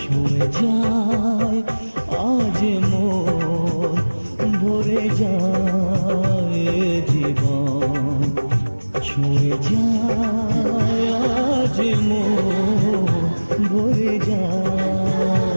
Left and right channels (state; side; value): inverted; both; correlation -1.00